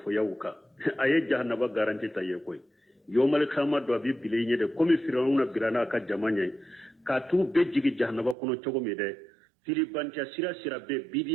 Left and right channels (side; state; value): left; drops out; at 8.3 s